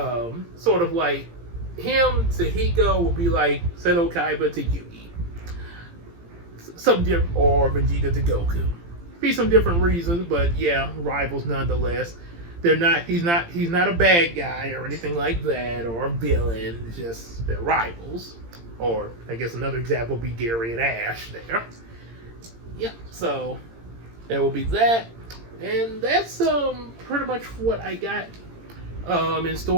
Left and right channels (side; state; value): left; late; 17 ms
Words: sort of like him to Hiko will be like Seto Kaiba to Yugi. Or Vegeta to Goku. Be some different reasons, but yeah, rivals nonetheless. He's not a bad guy or anything like that, or a villain. It's just they're rivals. Or I guess another example would be Gary and Ash there. Yep. So there will be that, and that's pretty much what I got in